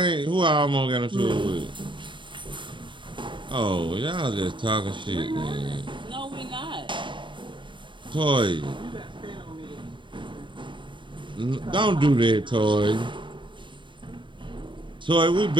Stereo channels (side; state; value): left; late; 0.23 ms